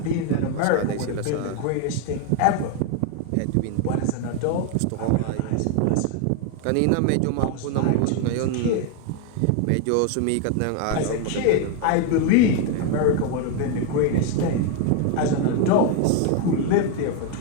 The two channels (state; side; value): different; both; correlation 0.01